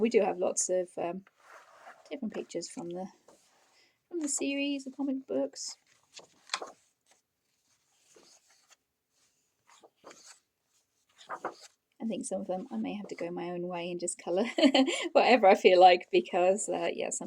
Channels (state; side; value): identical; both; correlation 1.00